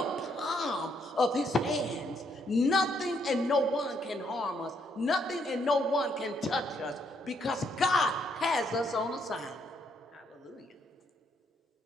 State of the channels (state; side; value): normal; both; correlation 0.72